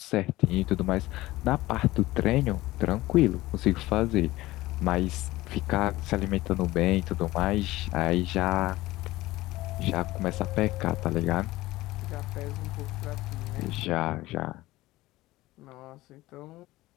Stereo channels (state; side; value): quieter; right; 18.0 dB